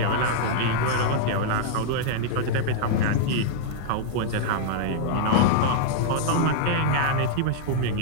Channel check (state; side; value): different; both; correlation -0.01